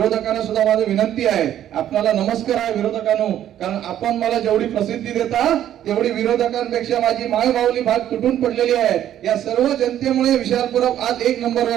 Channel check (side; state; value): left; quieter; 11.3 dB